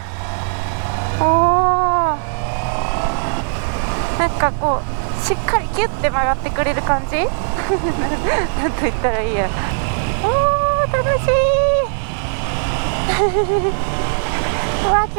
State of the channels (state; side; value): silent; left; digital silence